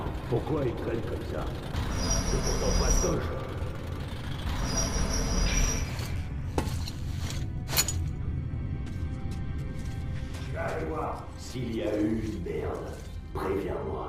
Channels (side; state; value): both; identical; correlation 1.00